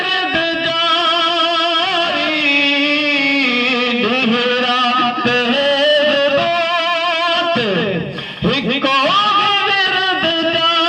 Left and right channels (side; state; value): both; identical; correlation 1.00